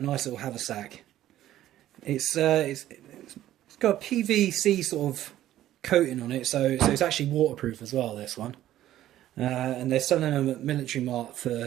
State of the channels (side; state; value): left; quieter; 13.2 dB